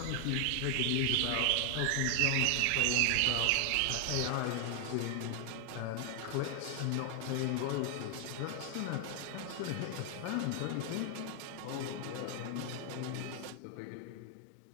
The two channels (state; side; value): different; both; correlation 0.00